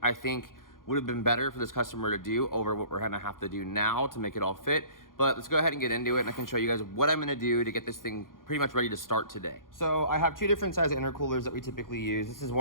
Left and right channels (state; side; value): late; right; 0.90 ms